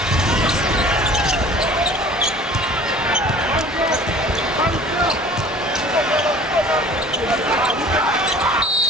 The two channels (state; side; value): normal; both; correlation 0.47